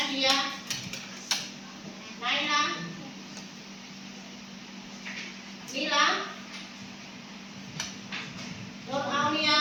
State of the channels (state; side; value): identical; both; correlation 1.00